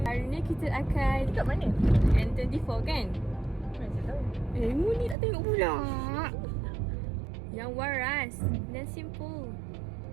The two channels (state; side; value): drops out; left; at 5.2 s